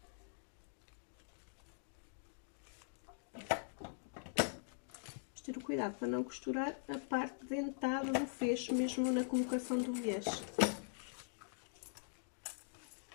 Vamos ter o cuidado para não costurar a parte dentada do fecho, mesmo na colocação do viés.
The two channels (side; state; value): right; silent; digital silence